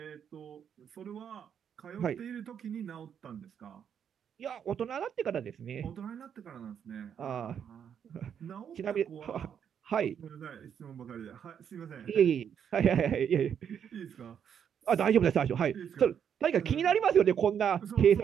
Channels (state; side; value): quieter; left; 8.2 dB